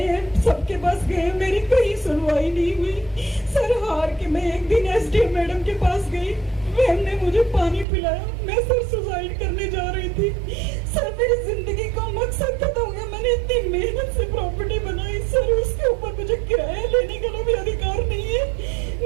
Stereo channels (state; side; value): drops out; left; at 7.9 s